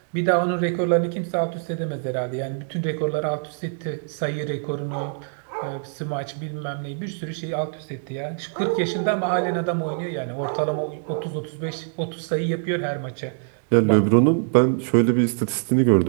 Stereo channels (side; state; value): left; silent; digital silence